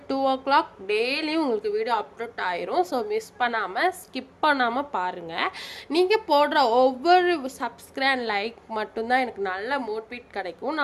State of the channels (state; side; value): identical; both; correlation 1.00